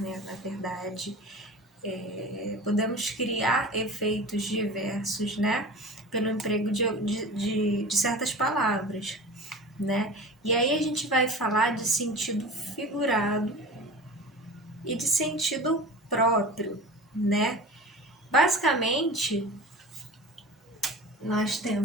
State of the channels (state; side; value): normal; both; correlation 0.35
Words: na verdade, podemos criar efeitos diversos, né, pelo emprego de certas palavras, né? E aí a gente vai falar de sentido figurado e de sentido próprio, né? Basicamente, nós